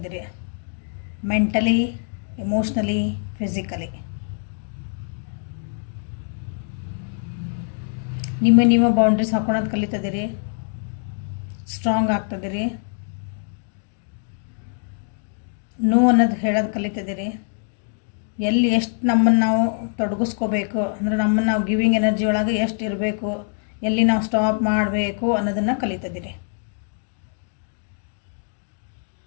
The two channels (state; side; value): silent; right; 63 dB below the other